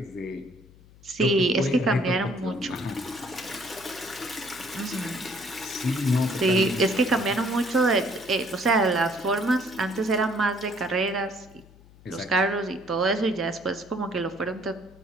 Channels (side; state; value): left; noise; hum, 24 dB below the sound